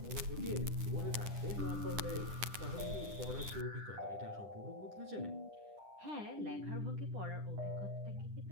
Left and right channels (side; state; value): left; late; 10 ms